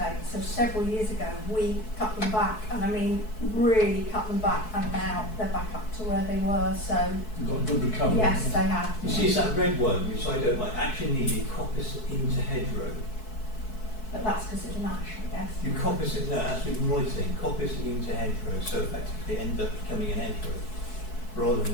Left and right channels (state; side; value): late; right; 4.6 ms